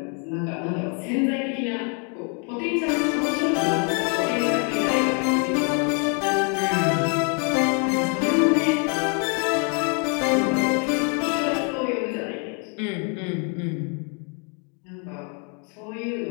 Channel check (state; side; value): quieter; right; 37.7 dB